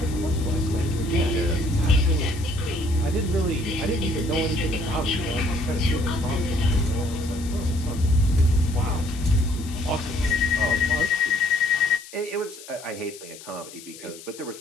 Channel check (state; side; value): noise; left; hiss, 17 dB below the sound